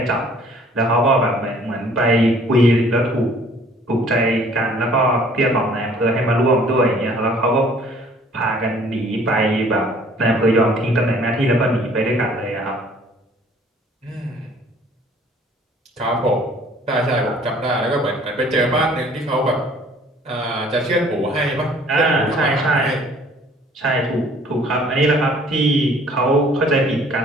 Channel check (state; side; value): normal; both; correlation 0.55